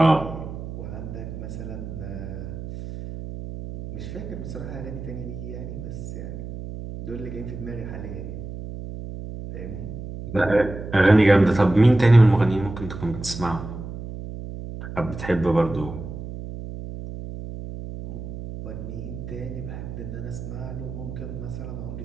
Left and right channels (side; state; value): right; noise; hum, 9 dB below the sound